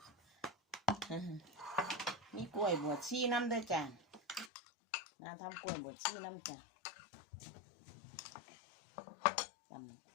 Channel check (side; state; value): right; drops out; at 4.5 s